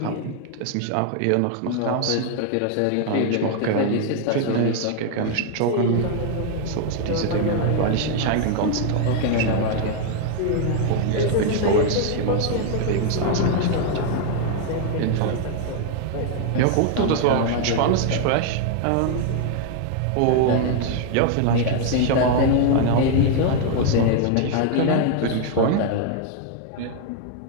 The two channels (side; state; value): both; different; correlation 0.00